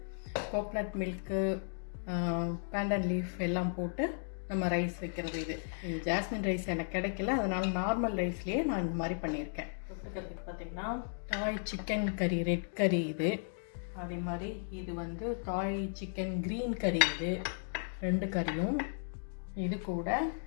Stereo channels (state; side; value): silent; right; digital silence